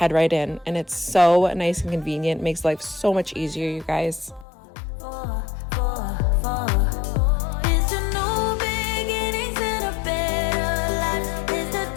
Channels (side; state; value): right; drops out; at 4.5 s